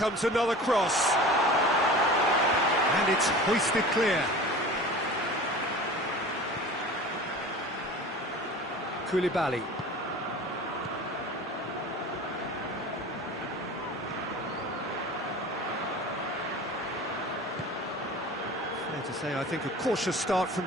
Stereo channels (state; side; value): normal; both; correlation 0.38